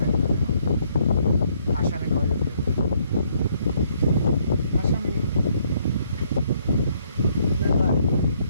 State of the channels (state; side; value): inverted; both; correlation -0.69